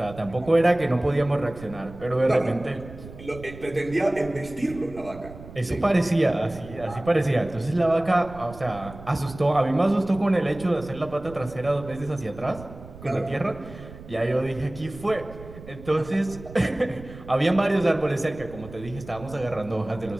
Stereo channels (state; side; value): noise; right; rumble, 16 dB below the sound